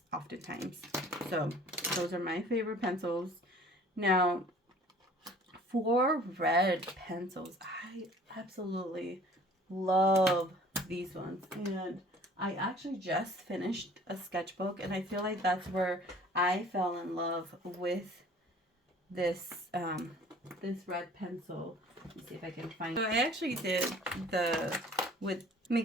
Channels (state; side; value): normal; both; correlation 0.50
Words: oftentimes. So those are my favorite pencils. Now, for red pencils, I absolutely love these ones, and I actually just finished a sketchbook, and I feel like that's where I fell in love with this this red pencil. Let's see if I can find. So I actually did with